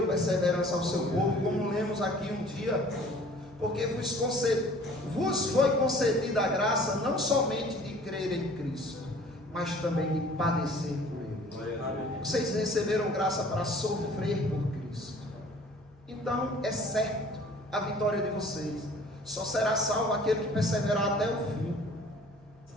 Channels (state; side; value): noise; right; hum, 29 dB below the sound